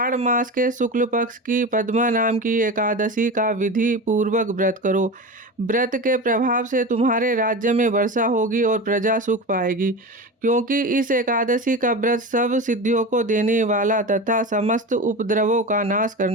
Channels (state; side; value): normal; both; correlation 0.27